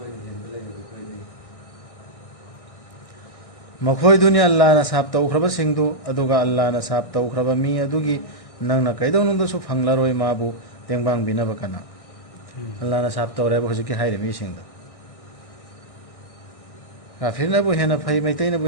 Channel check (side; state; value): right; late; 1.6 ms